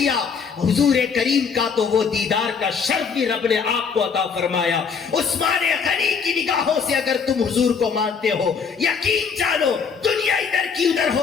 حضور کریم کا، تو وہ دیدار کا شرف بھی رب نے آپ کو عطا فرمایا۔ عثمان غنی کی نگاہوں سے اگر تم حضور کو مانتے ہو، یقین جانو دنیا ادھر کی ادھر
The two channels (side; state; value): right; quieter; 5.9 dB